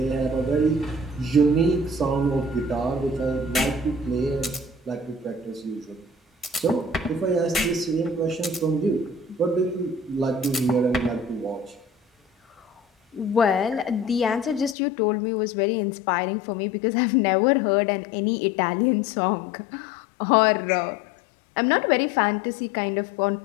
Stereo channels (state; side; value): drops out; right; at 14.8 s